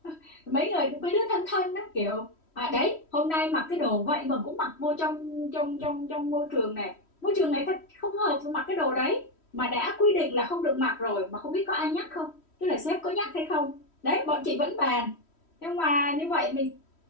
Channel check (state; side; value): late; right; 3.1 ms